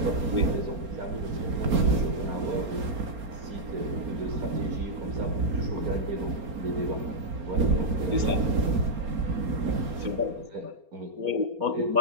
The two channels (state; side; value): late; left; 4.3 ms